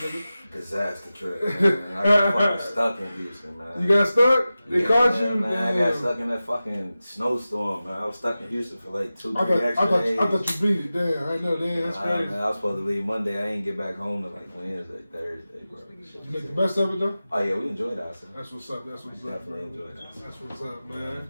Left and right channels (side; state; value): both; inverted; correlation -0.95